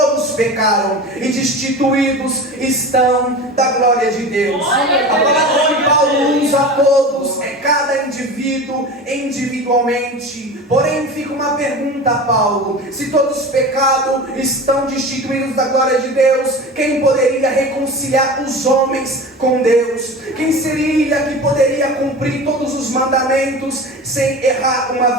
pecaram e destituídos estão da glória de Deus. A palavra que Paulo usa a todos é cada indivíduo individualmente. Porém fica uma pergunta a Paulo: se todos pecaram, estão destituídos da glória de Deus, quem poderia reconciliar os homens com Deus? Quem seria que poderia cumprir todos os mandamentos sem errar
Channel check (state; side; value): normal; both; correlation 0.32